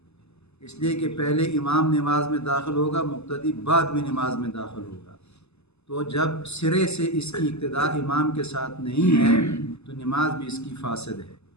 اس لیے کہ پہلے امام نماز میں داخل ہوگا، مقتدی بعد میں نماز میں داخل ہوگا۔ تو جب سرے سے اس کی اقتداء امام کے ساتھ نہیں ہے تو نماز بھی اس کی فاسد ہے،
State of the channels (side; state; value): right; late; 0.80 ms